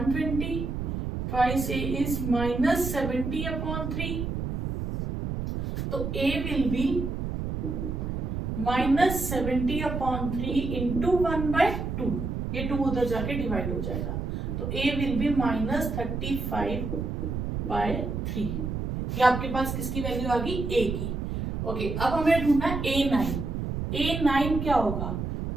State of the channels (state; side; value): noise; right; rumble, 3 dB below the sound